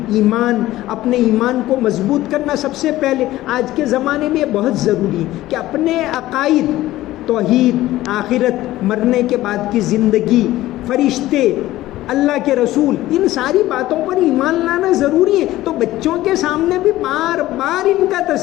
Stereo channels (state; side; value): quieter; right; 15.8 dB